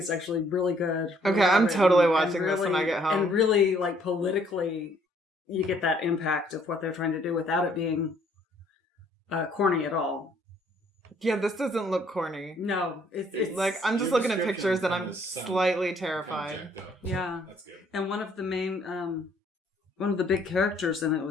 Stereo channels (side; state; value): both; normal; correlation 0.64